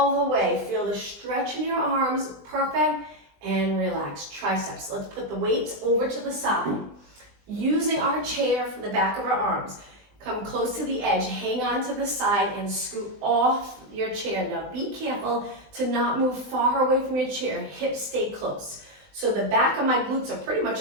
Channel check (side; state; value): left; late; 20 ms